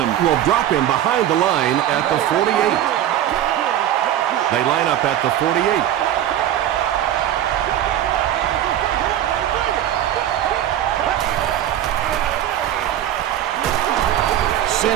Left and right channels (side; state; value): left; quieter; 11.6 dB